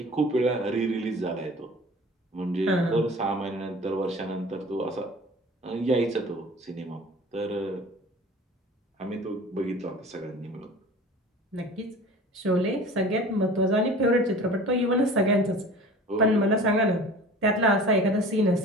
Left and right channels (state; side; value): normal; both; correlation 0.42